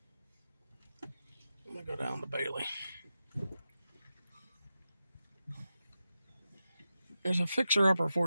I'm going to go down to Bailey. There's a fixer-upper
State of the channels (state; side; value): inverted; both; correlation -0.91